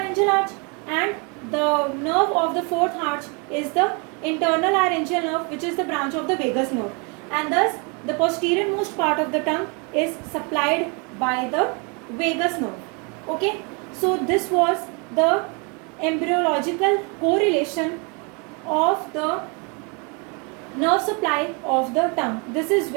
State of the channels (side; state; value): left; quieter; 33.1 dB